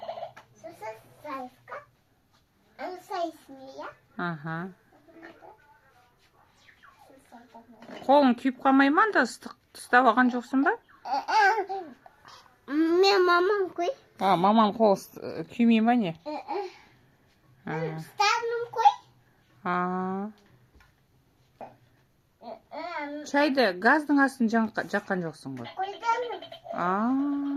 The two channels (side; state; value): both; identical; correlation 1.00